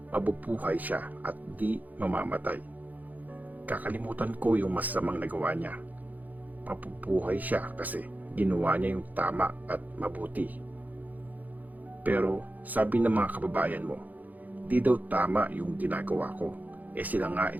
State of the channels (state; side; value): late; left; 0.081 ms